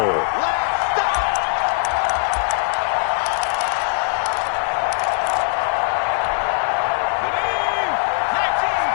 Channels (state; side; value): silent; right; digital silence